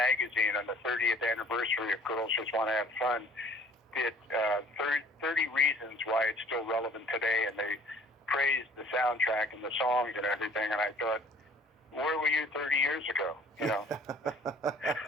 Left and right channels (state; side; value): normal; both; correlation 0.53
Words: on the 30th anniversary of Girls Just Want to Have Fun did 30 reasons why it's still relevant today, and they praised the soundtrack and the songs and everything. And I thought, where were you 30 years ago? You know.